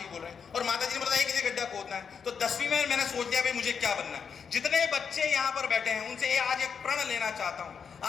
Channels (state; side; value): quieter; right; 6.5 dB